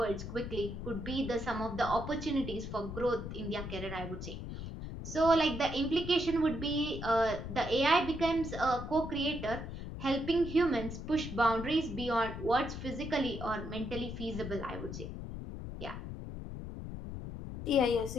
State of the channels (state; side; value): noise; left; rumble, 8 dB below the sound